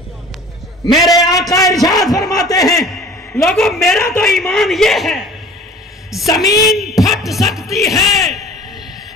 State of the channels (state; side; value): normal; both; correlation 0.46